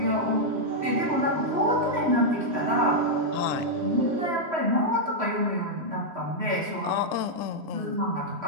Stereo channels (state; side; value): late; left; 3.1 ms